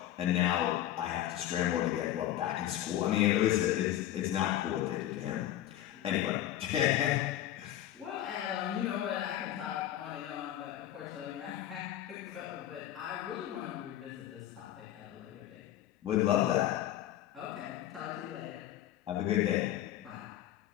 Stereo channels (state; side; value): quieter; right; 12.7 dB